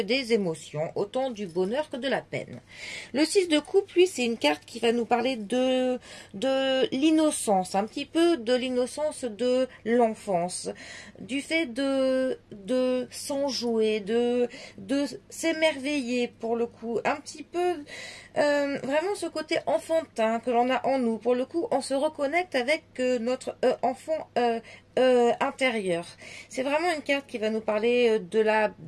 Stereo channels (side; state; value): both; identical; correlation 1.00